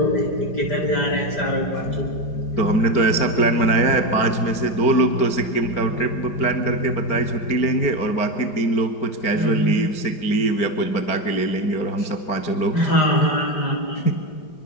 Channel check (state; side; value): late; right; 4.5 ms